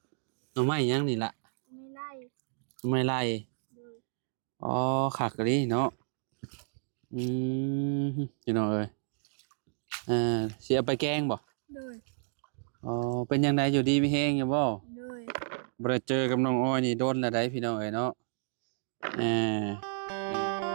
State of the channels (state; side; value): silent; left; digital silence